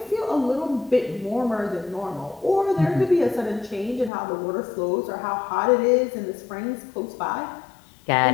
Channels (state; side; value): drops out; right; at 4.1 s